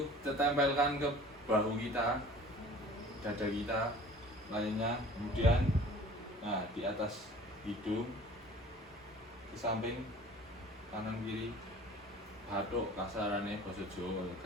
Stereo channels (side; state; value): both; normal; correlation 0.47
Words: kita tempelkan ke bahu kita, dada kita, lainnya, kemudian nah di atas hidung, di samping kanan kiri, bathuk kasarannya basa Jawa